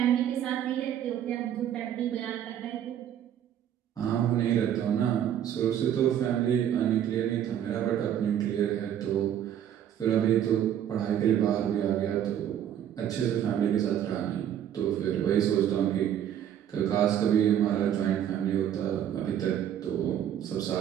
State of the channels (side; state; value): left; quieter; 10.2 dB